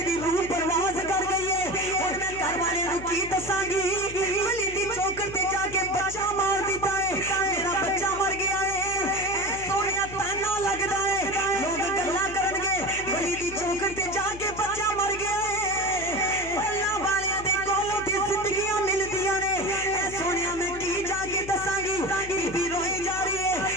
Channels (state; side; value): noise; left; hum, 14 dB below the sound